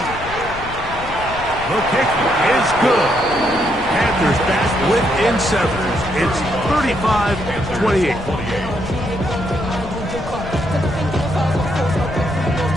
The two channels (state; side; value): noise; left; rumble, 12 dB below the sound